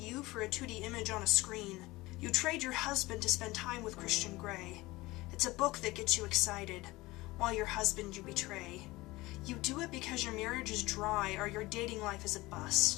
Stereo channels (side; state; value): right; quieter; 20.4 dB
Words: for a 2D image on a screen. You trade your husband to spend time with Christian Grey. It's a book that gets you excited, while your husband you betray. You do it because your marriage is dry or your dating life is a